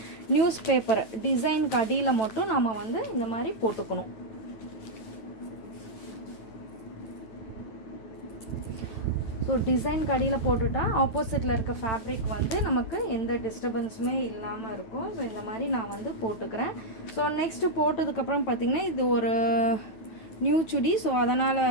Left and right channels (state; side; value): late; right; 9.4 ms